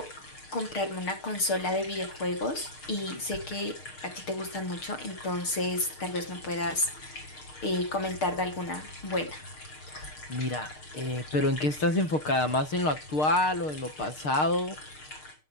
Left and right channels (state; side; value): late; right; 6.6 ms